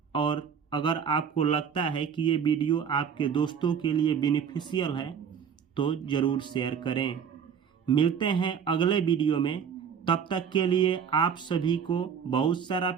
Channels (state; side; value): quieter; left; 7.3 dB